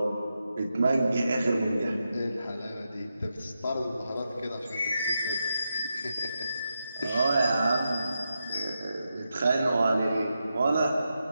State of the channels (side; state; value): both; inverted; correlation -0.87